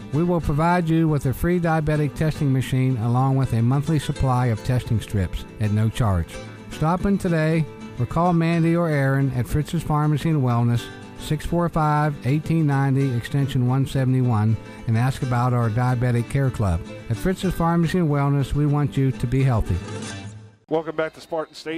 We will provide you with a free diabetic testing machine along with a monthly supply of testing strips at no charge. Stop in today or call Mandy or Aaron at Fritz's Pharmacy and Wellness, 645-1890, extension 171, and ask about our Diabetic Care Club. At Fritz's Pharmacy and Wellness, we want you to be healthy. Welcome back to Spartans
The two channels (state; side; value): identical; both; correlation 1.00